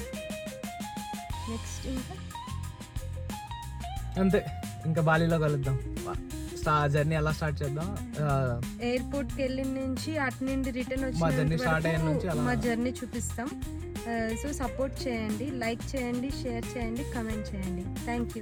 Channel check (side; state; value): both; identical; correlation 1.00